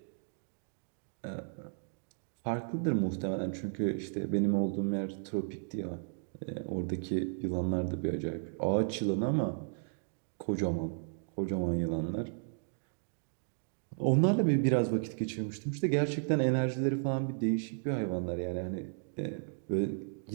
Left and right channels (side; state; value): left; silent; digital silence